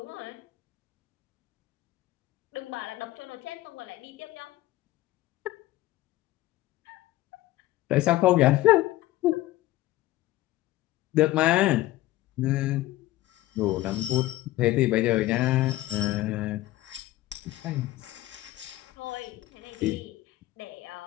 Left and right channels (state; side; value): quieter; right; 16.7 dB